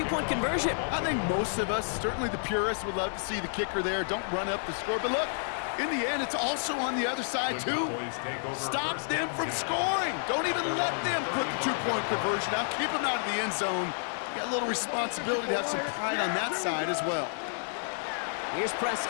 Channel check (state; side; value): silent; right; 58 dB below the other